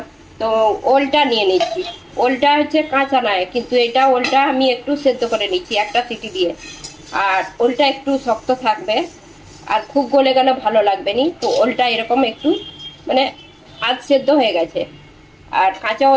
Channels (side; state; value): both; identical; correlation 1.00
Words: তো ওলটা নিয়ে নিচ্ছি। ওলটা হচ্ছে কাঁচা নয়, কিন্তু এটা ওলটা আমি একটু সেদ্ধ করে নিচ্ছি একটা সিটি দিয়ে। আর ওলটা একটু শক্ত থাকবে, আর খুব গলে গেলে ভালো লাগবে নি। তো ওলটা এরকম একটু আধ সেদ্ধ হয়ে গেছে। আর কাঁচা